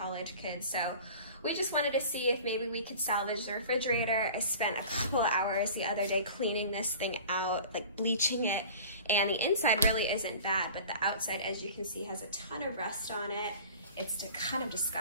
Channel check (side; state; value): both; inverted; correlation -0.41